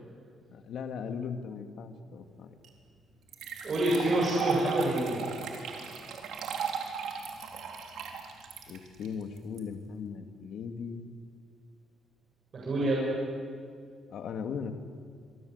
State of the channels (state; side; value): normal; both; correlation 0.72